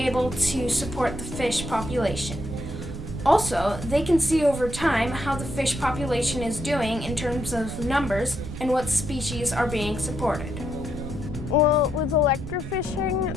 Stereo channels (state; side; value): noise; right; rumble, 8 dB below the sound